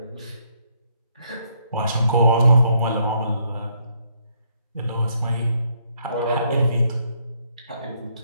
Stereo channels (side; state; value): both; inverted; correlation -0.71